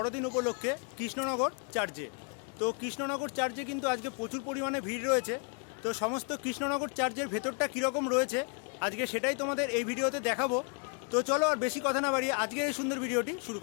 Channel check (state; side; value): quieter; right; 38.8 dB